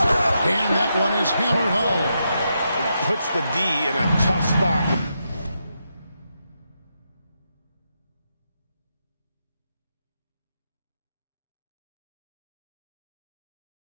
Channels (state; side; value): inverted; both; correlation -0.84